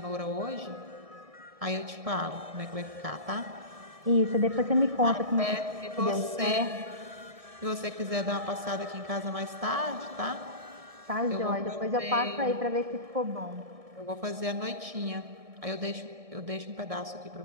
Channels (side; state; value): left; late; 1.7 ms